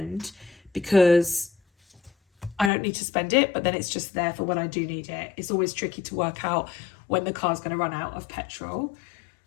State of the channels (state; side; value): drops out; right; at 2.7 s